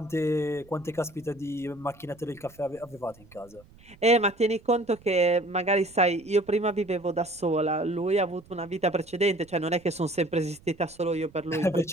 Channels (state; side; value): noise; right; rumble, 26 dB below the sound